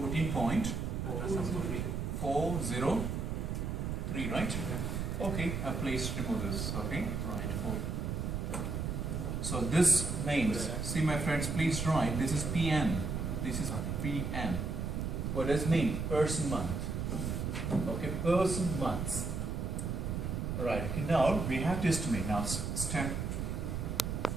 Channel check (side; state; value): right; noise; rumble, 2 dB below the sound